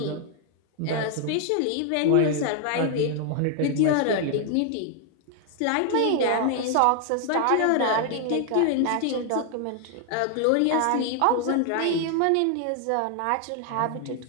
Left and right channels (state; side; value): different; both; correlation 0.00